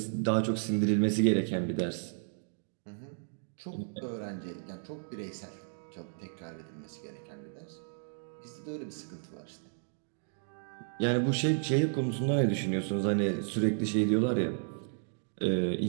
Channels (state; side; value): silent; left; digital silence